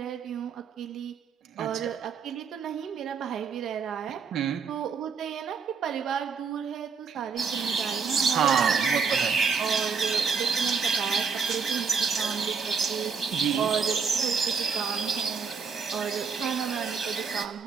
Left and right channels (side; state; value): left; quieter; 5.8 dB